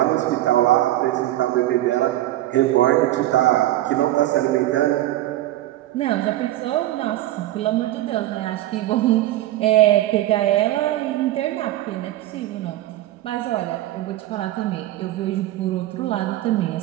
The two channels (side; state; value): left; quieter; 15.0 dB